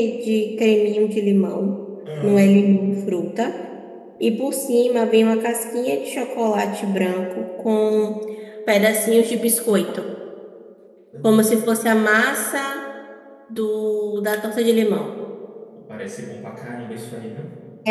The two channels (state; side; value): identical; both; correlation 1.00